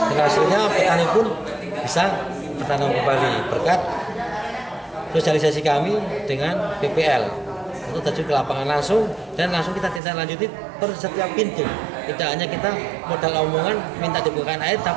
hasilnya petani pun bisa bertanam kembali berkat sosialisasi kami dengan PPL untuk terjun ke lapangan langsung, dan langsung kita tindak lanjuti per setiap pintu. Tidak hanya kita modal omongan minta dibukakan air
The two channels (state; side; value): drops out; left; at 10.0 s